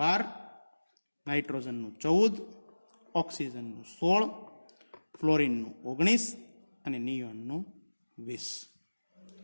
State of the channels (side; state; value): both; inverted; correlation -1.00